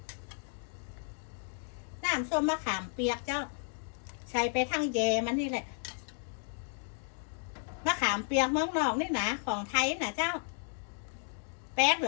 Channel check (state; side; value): silent; right; 55 dB below the other